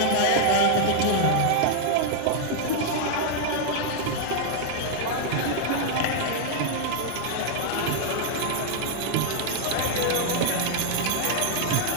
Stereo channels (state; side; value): different; both; correlation -0.01